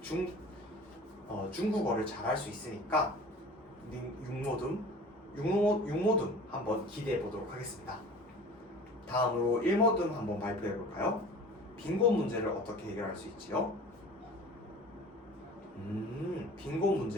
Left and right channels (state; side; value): normal; both; correlation 0.42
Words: 중국어를 잘할 수 있으니까 6모둠 한번 기대해 보도록 하겠습니다. 다음으로 1모둠 한번 발표해 볼까요? 빈곤 문제를 어떻게 해결할 수 있지요? 빈곤